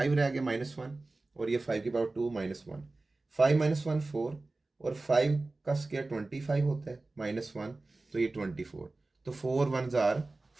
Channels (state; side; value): quieter; left; 3.2 dB